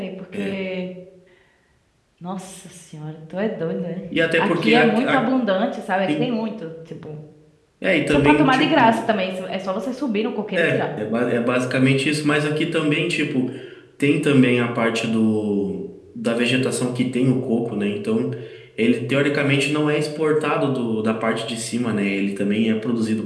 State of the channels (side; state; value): both; identical; correlation 1.00